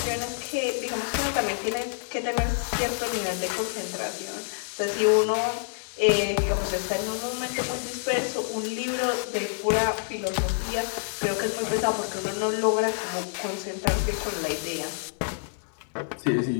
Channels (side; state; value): right; silent; digital silence